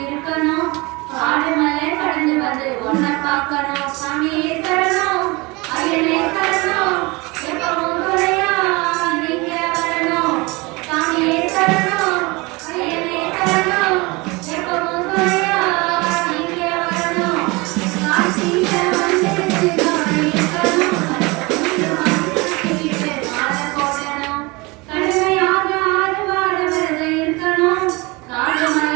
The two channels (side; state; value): left; quieter; 25.1 dB